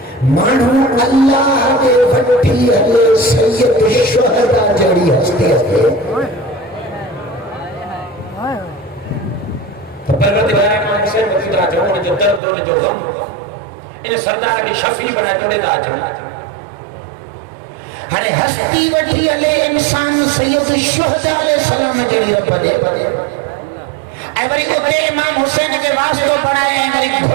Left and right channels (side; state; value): left; drops out; at 12.4 s